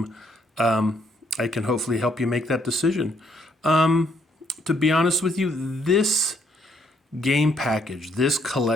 I can hopefully help you make that decision. To be honest with you, this game package, this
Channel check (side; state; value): both; normal; correlation 0.70